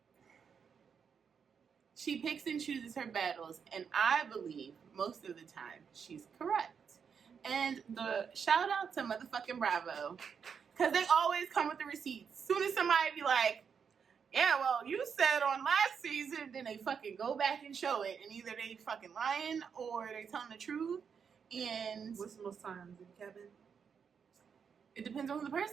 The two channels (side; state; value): left; quieter; 6.7 dB